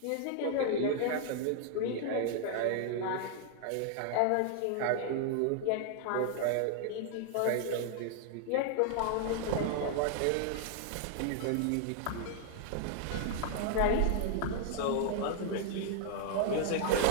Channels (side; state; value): both; different; correlation -0.01